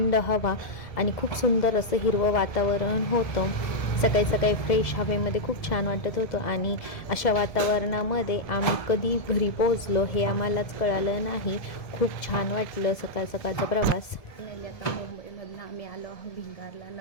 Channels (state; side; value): late; right; 1.7 ms